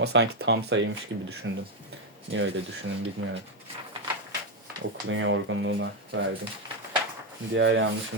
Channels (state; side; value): normal; both; correlation 0.05